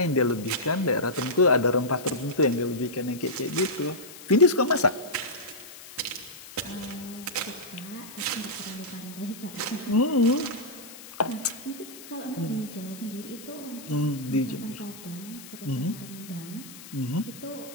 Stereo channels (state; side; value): noise; left; hiss, 16 dB below the sound